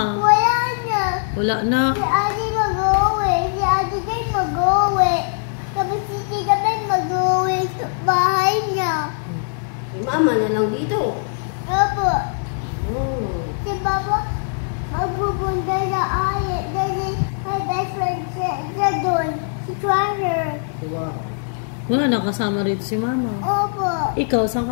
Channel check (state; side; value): silent; right; digital silence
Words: Wala na. Wala na. Si Ate mag-uwi. Si Ate Jane mag-uwi. Tapos si Tita Ben mag-uwi sa bahay niya. Si mama na lang dito. Opo. Oh. Si Papa magpupunta sa ayat. Dahil may best friend siya doon. Si Treasure. Wow. Wala na kasama rito si mama. Opo. Ikaw, saan